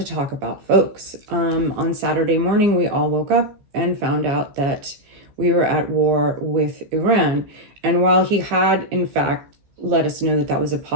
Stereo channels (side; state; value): left; late; 15 ms